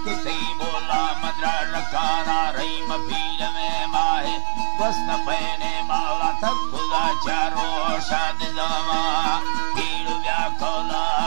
किसी बोला मदरा रखाना रही मफील में माहे वस्त पहने मावला तब खुदा चारो शाद दावा पीड़ व्याकोला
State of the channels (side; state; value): left; silent; 61 dB below the other